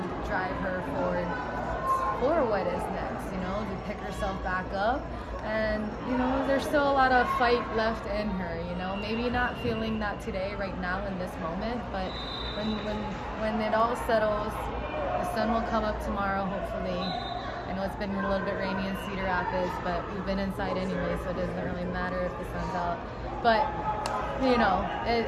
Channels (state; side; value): identical; both; correlation 1.00